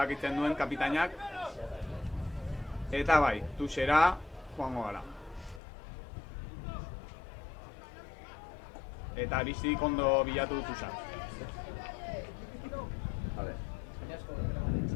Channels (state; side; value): drops out; right; at 5.6 s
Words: duen kapitainak. Eta bai, Tuxera joango gara. Eta Aristik ondo bilatu du Tuxa. Vale.